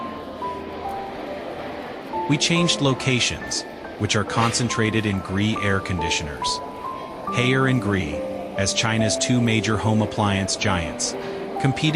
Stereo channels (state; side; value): identical; both; correlation 1.00